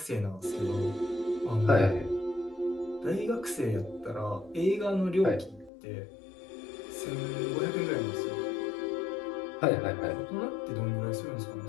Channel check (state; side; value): drops out; right; at 5.7 s